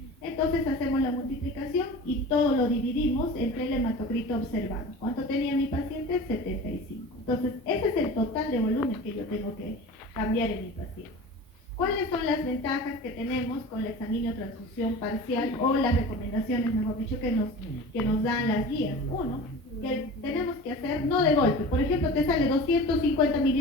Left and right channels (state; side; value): normal; both; correlation 0.36